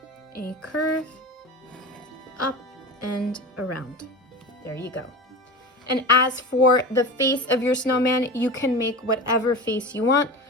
A curve, up and around. There you go. And as for the face of your snowman, you can make whatever face you want.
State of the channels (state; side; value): normal; both; correlation 0.30